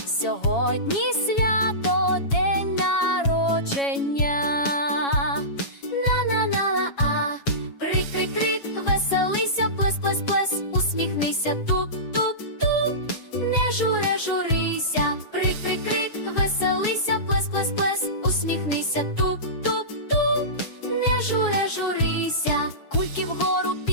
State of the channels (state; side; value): late; right; 7.2 ms